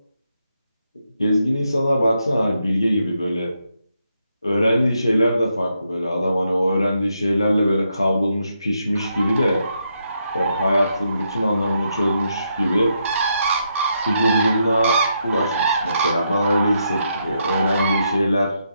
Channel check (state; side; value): inverted; both; correlation -0.80